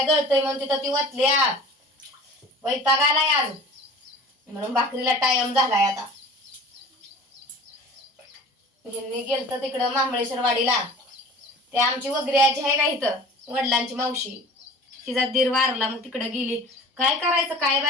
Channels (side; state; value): both; normal; correlation 0.43